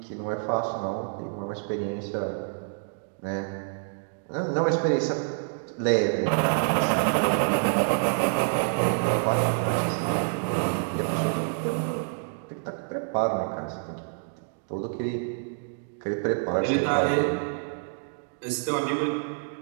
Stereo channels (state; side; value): silent; left; digital silence